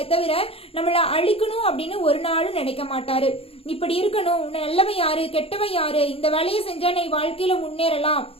தவிர நம்மள அழிக்கணும் அப்படின்னு ஒரு நாளும் நினைக்க மாட்டாரு. இப்படி இருக்கணும், நல்லவன் யாரு கெட்டவன் யாரு, இந்த வேலையை செஞ்சா நீ வாழ்க்கையில முன்னேறலாம்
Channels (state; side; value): late; right; 0.28 ms